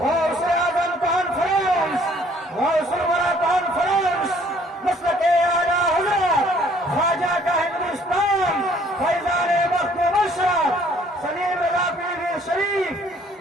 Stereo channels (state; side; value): normal; both; correlation 0.59